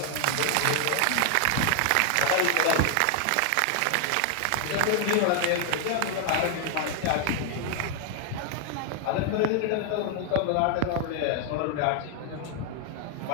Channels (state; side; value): different; both; correlation 0.00